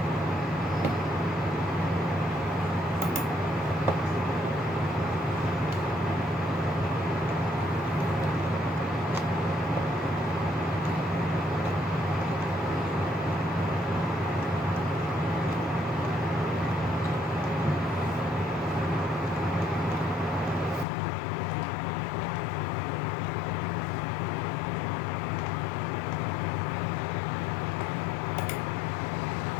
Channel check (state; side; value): drops out; right; at 20.9 s